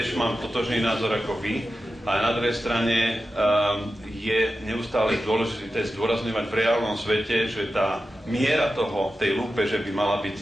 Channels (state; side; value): normal; both; correlation 0.92